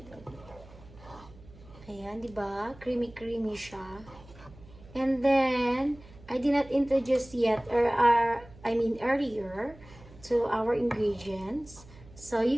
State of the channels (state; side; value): noise; right; hum, 21 dB below the sound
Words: Ayan, diba? Creamy siya. And then, I did not introduce yet, or earlier, to our ingredients. So